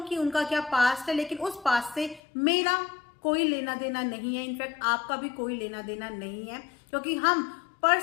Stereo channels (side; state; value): right; drops out; at 2.2 s